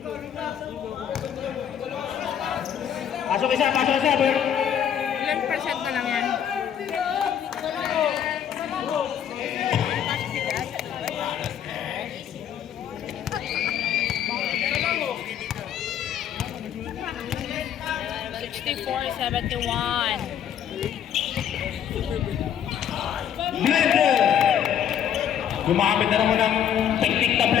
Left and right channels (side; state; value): right; quieter; 9.3 dB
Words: Pasok isa, Sabret. Ilan percent na lang yan? Blender. Gumamit na naman ng technique na